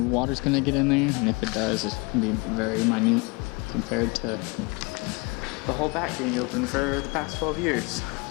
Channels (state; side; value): quieter; right; 28.0 dB